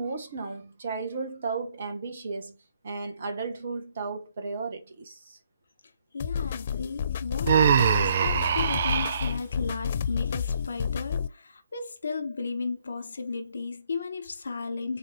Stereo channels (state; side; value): inverted; both; correlation -0.69